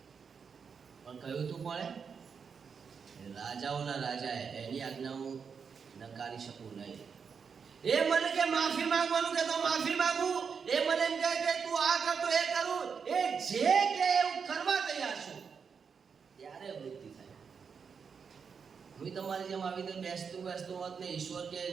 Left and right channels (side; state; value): left; quieter; 6.2 dB